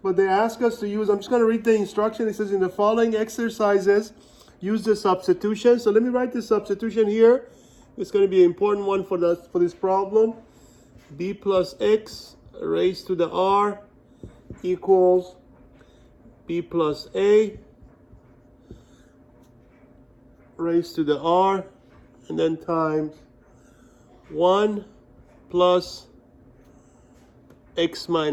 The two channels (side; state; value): both; identical; correlation 1.00